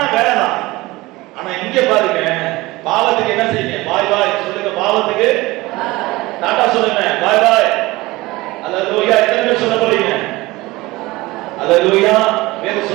வேலை தான். ஆனா இங்க பாருங்க, பாவத்துக்கு என்ன செய்யுங்க? பாய் பாய் சொல்லுங்க. பாவத்துக்கு டாடா சொல்லுங்க, பாய் பாய். அல்லேலூயா. எத்தனை பேர் சொல்ல போறீங்க? அல்லேலூயா. வேற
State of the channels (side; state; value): left; quieter; 20.4 dB